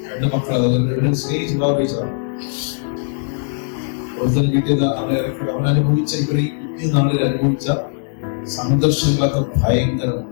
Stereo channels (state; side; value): silent; right; digital silence